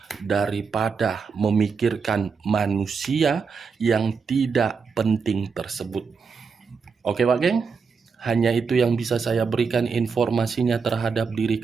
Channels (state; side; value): quieter; left; 5.4 dB